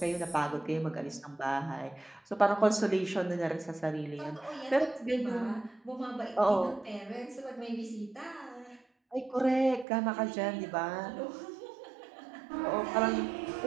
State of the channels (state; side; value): drops out; left; at 9.9 s